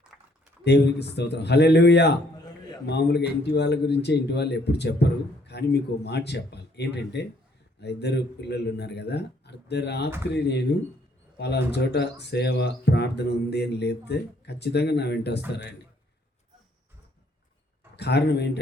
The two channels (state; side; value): normal; both; correlation 0.66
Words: దేవునికి స్తోత్రం. హల్లెలూయా. మామూలుగా ఇంటి వాళ్ళ గురించే ఇంటి వాళ్ళు ఎప్పుడు చెప్పరు, కానీ మీకు మాట చెప్పాలి. ఏంటంటే ఆ ఇద్దరు పిల్లలు ఉన్నారు కదా, అర్ధరాత్రి నేను పలానా చోట సేవ ప్రార్థన ఉంది అని లేపితే ఖచ్చితంగా నా వెంట వస్తారండి. కారణం